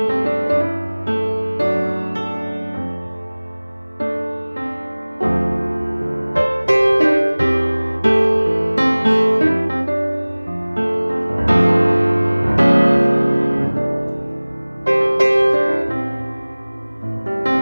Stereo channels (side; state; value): both; inverted; correlation -1.00